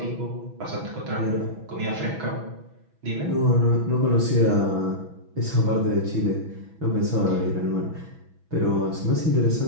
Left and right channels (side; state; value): left; late; 6.1 ms